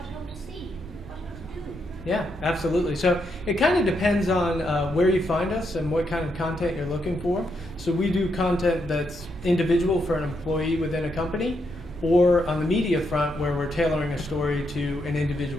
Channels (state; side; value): normal; both; correlation 0.79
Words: I want to see? What I want to do? Yeah, absolutely. So it kind of depends on where you find us and what kind of content you're looking for. So we do content that's individual for an employee within a company, or on the media front where we're tailoring a story to an